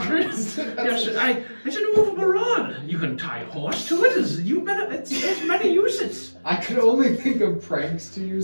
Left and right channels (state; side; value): inverted; both; correlation -1.00